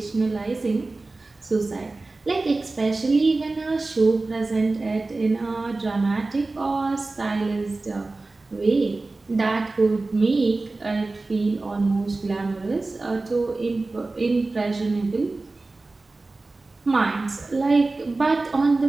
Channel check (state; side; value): quieter; left; 3.3 dB